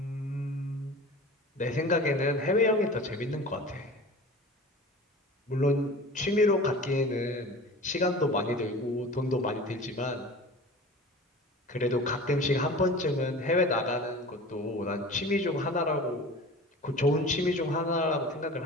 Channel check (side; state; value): both; normal; correlation 0.38